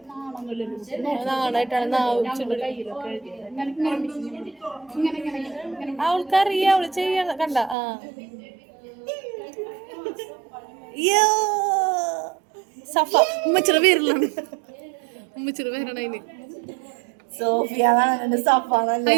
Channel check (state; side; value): drops out; left; at 7.8 s